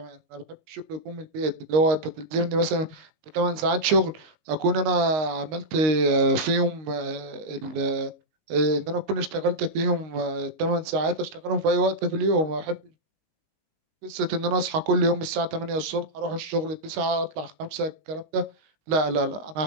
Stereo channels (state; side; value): late; left; 19 ms